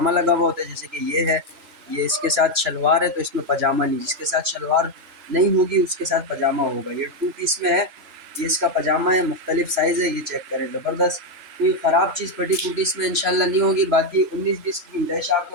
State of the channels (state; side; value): late; left; 3.4 ms